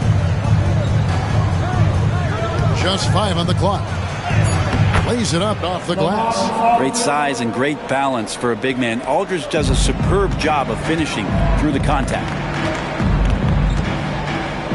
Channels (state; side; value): identical; both; correlation 1.00